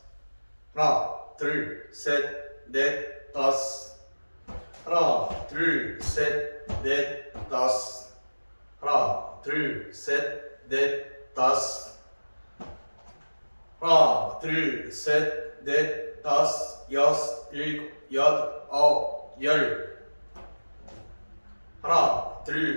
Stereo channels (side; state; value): both; inverted; correlation -1.00